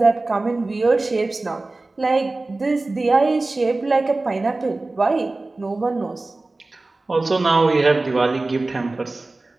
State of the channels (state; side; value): quieter; left; 3.2 dB